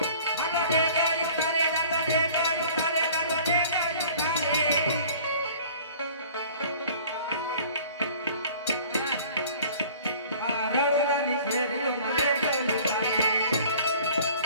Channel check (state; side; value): inverted; both; correlation -0.48